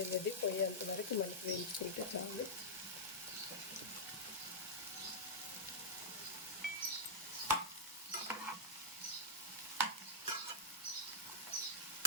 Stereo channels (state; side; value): normal; both; correlation -0.07